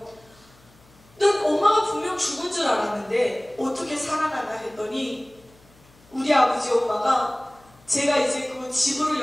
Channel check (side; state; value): left; noise; hum, 28 dB below the sound